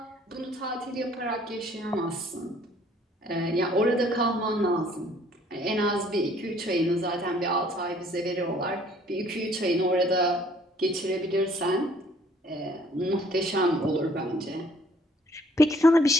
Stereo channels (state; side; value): normal; both; correlation 0.59